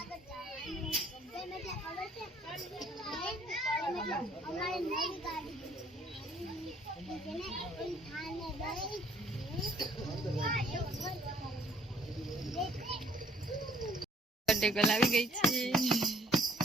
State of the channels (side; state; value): both; normal; correlation 0.60